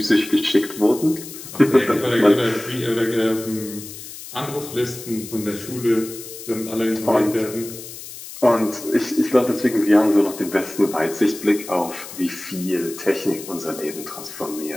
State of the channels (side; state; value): left; noise; hiss, 13 dB below the sound